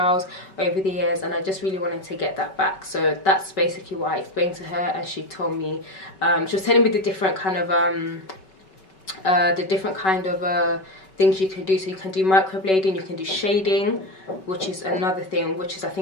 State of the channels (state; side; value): late; right; 5.3 ms